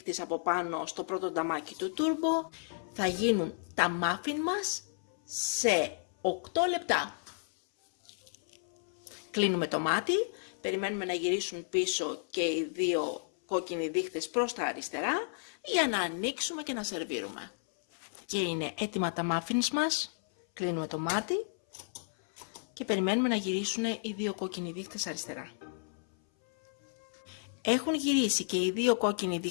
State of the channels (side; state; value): right; silent; 56 dB below the other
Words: από πάνω στο πρώτο νταμάκι του turbo, θα γίνουν τα muffin μας σε 8 λεπτά. Κλείνουμε το μάτι, περιμένουμε να γυρίσουν πίσω και οι δύο κόκκινοι δείκτες προς τα αριστερά για να ανοίξουμε και να σερβίρουμε. Και είναι έτοιμα τα muffins μας. Κλείνουμε το μάτι και περιμένουμε να γυρίσουν οι δύο κόκκινοι δείκτες αριστερά. Έχουν γυρίσει και οι δύο κόκκινοι